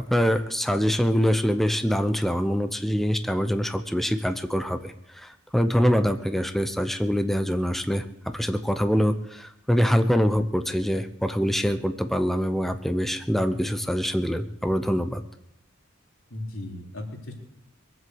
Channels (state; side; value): normal; both; correlation 0.94